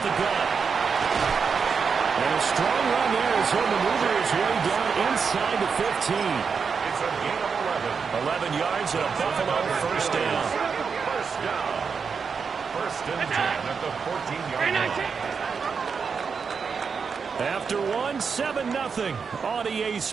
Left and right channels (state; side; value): quieter; left; 5.8 dB